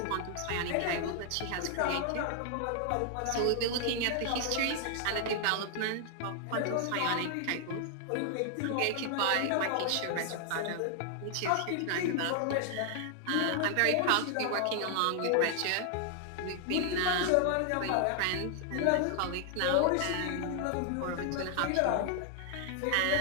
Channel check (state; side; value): different; both; correlation 0.00